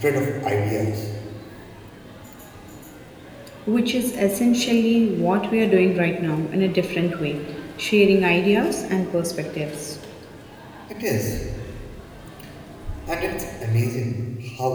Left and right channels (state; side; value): identical; both; correlation 1.00